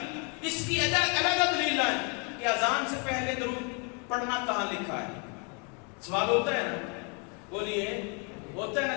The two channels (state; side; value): quieter; right; 35.5 dB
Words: اس کی علیحدہ دلیل لائیں کہ اذان سے پہلے درود پڑھنا کہاں لکھا ہے. سوال ہوتا ہے نا، بولیے ہوتا ہے